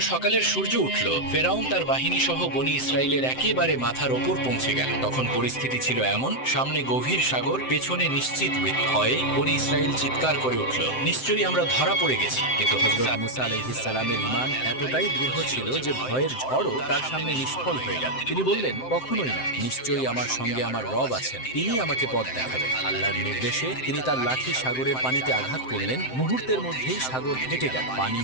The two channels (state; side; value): late; right; 7.7 ms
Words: সকালের সূর্য উঠল, ফেরাউন তার বাহিনী সহ বনী ইসরাইলের একেবারে মাথার ওপর পৌঁছে গেল। তখন পরিস্থিতি ছিল এমন, সামনে গভীর সাগর, পেছনে নিশ্চিত মৃত্যু। ভয়ে বনী ইসরাইল চিৎকার করে উঠল, নিশ্চয়ই আমরা ধরা পড়ে গেছি। কিন্তু হযরত মুসা আলাইহিস সালামের ঈমান এতটাই দৃঢ় ছিল যে ভয়ের ঝড়ও তার সামনে নিষ্ফল হয়ে গেল। তিনি বললেন, কখনোই না, নিশ্চয়ই আমার সঙ্গে আমার রব আছেন, তিনি আমাকে পথ দেখাবেন। আল্লাহর নির্দেশে তিনি তার লাঠি সাগরের পানিতে আঘাত করলেন। মুহূর্তের মধ্যেই সাগর ফেটে গেল, পানি